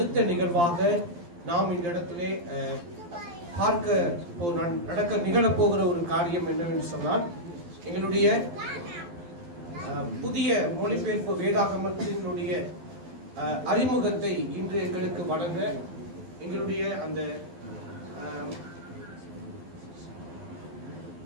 நிகழ்வாக நாம் இந்த இடத்திலே நிகழப்போகிற ஒரு காரியம் என்னவென்று சொன்னால், எங்களுடைய புதிய மொழிபெயர்ப்பு வேதாகமத்தினுடைய அறிமுகத்தை இன்று எங்களுக்கு வழங்க எங்களுடைய அந்த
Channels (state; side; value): late; left; 12 ms